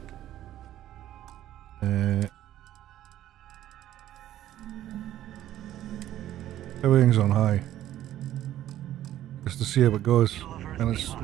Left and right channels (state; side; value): quieter; left; 12.8 dB